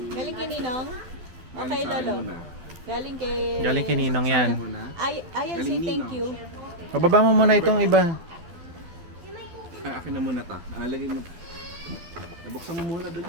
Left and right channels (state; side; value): late; left; 12 ms